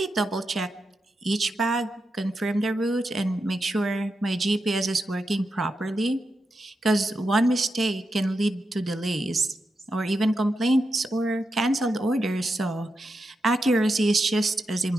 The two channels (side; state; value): both; normal; correlation 0.87